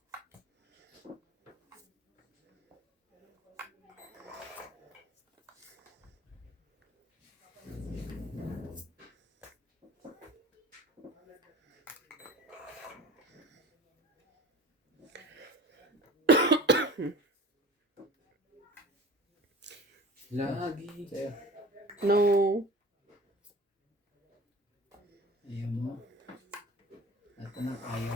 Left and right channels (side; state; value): both; normal; correlation 0.40